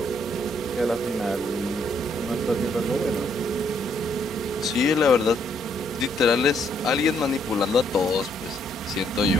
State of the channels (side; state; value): both; normal; correlation 0.71